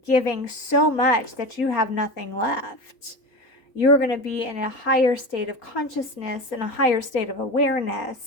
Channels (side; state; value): right; late; 3.9 ms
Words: giving so much that you have nothing left. You're going to be in a higher state of consciousness and a higher state of